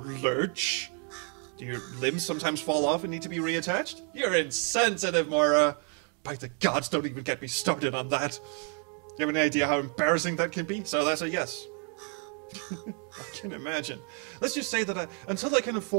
Do your limbs sometimes fall off and need to be reattached? You're insensitive, Moira. By the gods, don't even get me started on that. Do you have any idea how embarrassing that can be? So that's a yes. I can imagine. Let's just say that until I can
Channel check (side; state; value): left; quieter; 39.1 dB